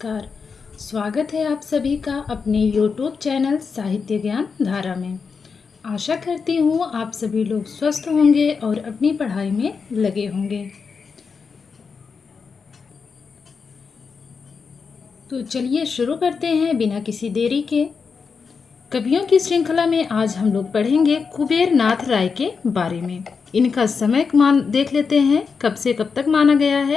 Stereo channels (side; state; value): right; quieter; 5.4 dB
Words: स्वागत है आप सभी का अपने YouTube चैनल साहित्य ज्ञान धारा में। आशा करती हूँ आप सभी लोग स्वस्थ होंगे और अपनी पढ़ाई में लगे होंगे। तो चलिए शुरू करते हैं बिना किसी देरी के। कवियों की श्रृंखला में आज हम लोग पढ़ेंगे कुबेर नाथ राय के बारे में। इनका समय देख लेते हैं, कब से कब तक माना गया